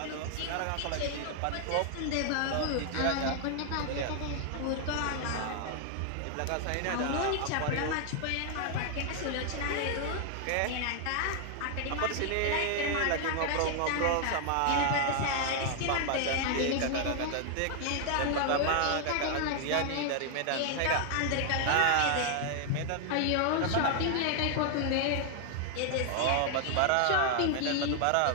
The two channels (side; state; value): both; different; correlation 0.00